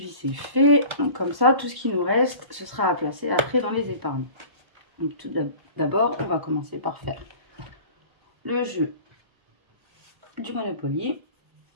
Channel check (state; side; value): late; left; 1.1 ms